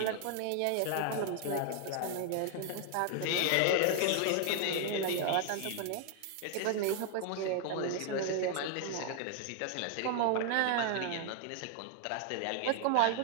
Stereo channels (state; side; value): different; both; correlation 0.00